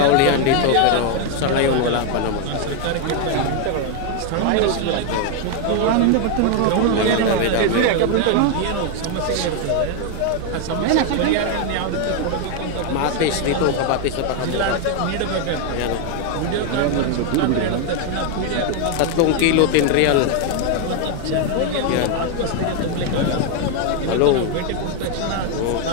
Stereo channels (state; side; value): different; both; correlation 0.01